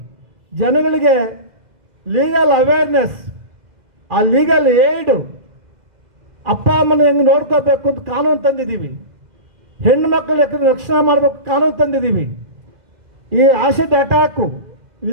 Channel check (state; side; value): late; left; 2.0 ms